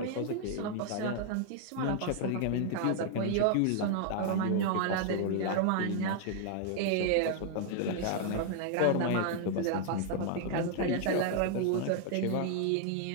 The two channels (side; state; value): both; different; correlation 0.00